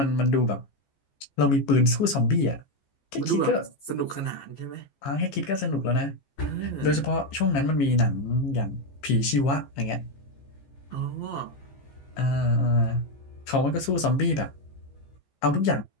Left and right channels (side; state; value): right; late; 15 ms